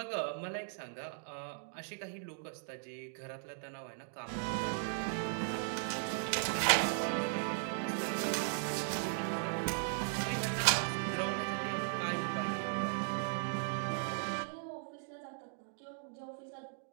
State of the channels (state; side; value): silent; left; digital silence